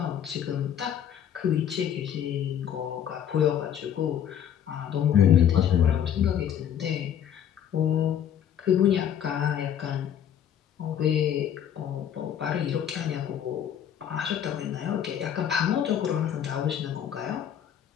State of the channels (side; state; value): right; quieter; 9.5 dB